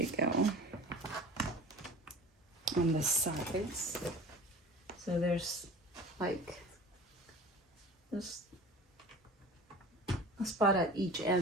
go? On the sides. So there's like just a spot at each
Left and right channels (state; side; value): normal; both; correlation 0.40